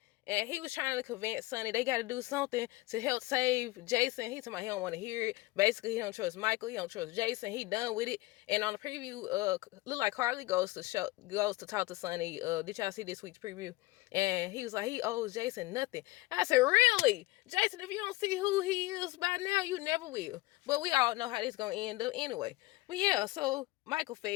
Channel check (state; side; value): quieter; right; 20.3 dB